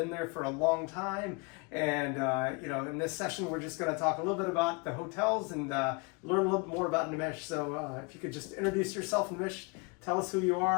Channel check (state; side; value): quieter; right; 30.5 dB